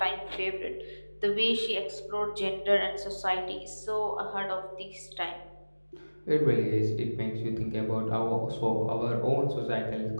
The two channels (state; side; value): inverted; both; correlation -1.00